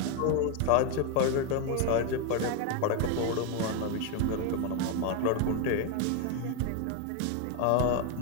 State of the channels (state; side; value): different; both; correlation 0.01